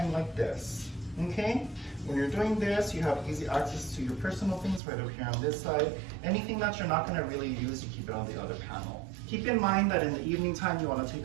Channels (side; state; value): left; drops out; at 4.8 s